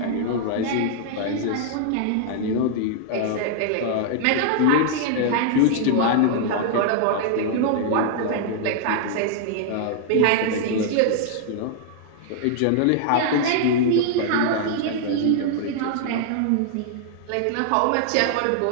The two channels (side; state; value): both; different; correlation -0.01